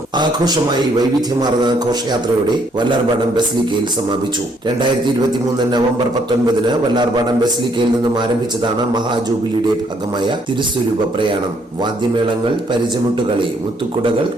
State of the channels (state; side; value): normal; both; correlation 0.68